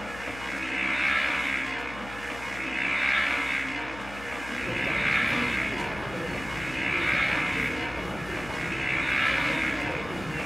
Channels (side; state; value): left; noise; hum, 14 dB below the sound